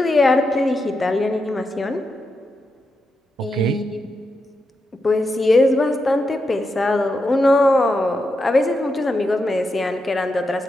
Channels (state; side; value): normal; both; correlation 0.86